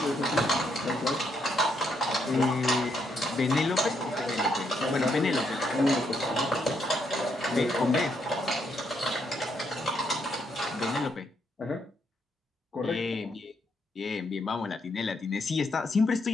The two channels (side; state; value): both; normal; correlation 0.76